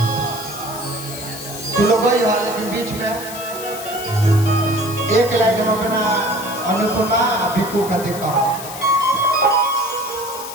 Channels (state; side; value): noise; left; hiss, 11 dB below the sound